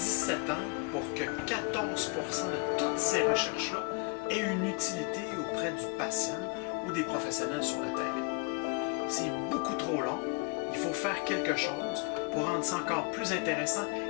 ans pour que 14% de toutes ces recherches-là aient une utilité auprès du patient ou des professionnels sur le terrain. C'est beaucoup trop long. Il faut faire quelque chose pour rendre ça encore plus intéressant.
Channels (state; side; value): quieter; right; 31.2 dB